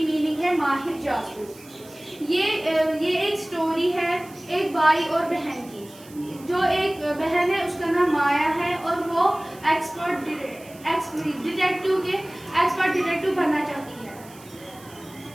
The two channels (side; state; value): right; noise; hiss, 22 dB below the sound